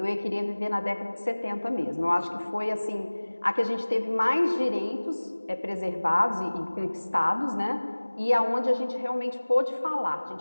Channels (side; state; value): both; inverted; correlation -1.00